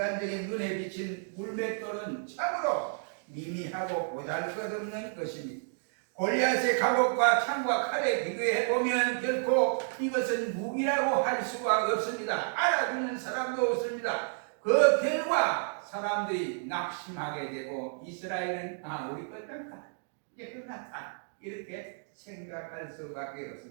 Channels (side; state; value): left; silent; digital silence